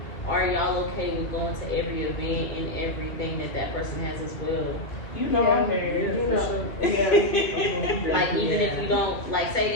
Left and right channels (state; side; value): late; right; 2.5 ms